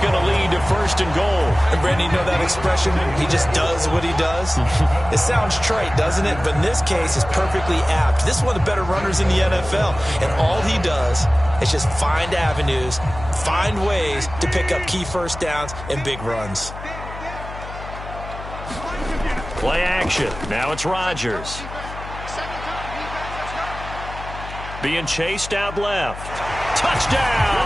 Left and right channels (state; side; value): noise; left; hum, 12 dB below the sound